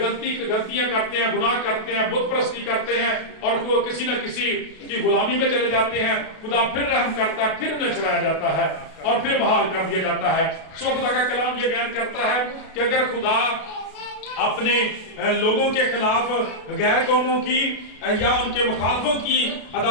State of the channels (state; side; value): late; right; 32 ms